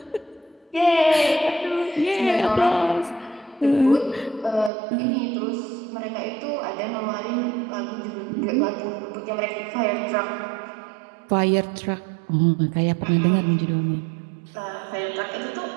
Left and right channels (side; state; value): left; drops out; at 4.7 s